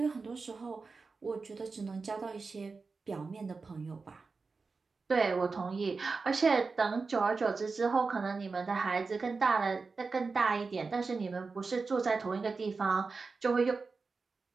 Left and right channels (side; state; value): left; quieter; 4.4 dB